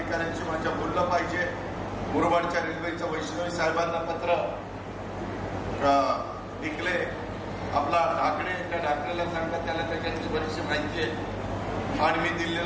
माझ्या बोललं पाहिजे. मुरबाडच्या रेल्वेचं वैष्णवी साहेबांना पत्र लिखले. आपला ढाकणे, त्या ढाकणेला सांगा त्याला त्याच्यातली बरीचशी माहिती आहे. आणि मी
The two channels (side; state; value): both; identical; correlation 1.00